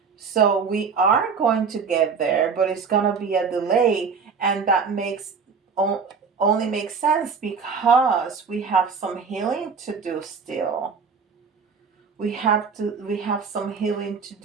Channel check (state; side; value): quieter; left; 5.6 dB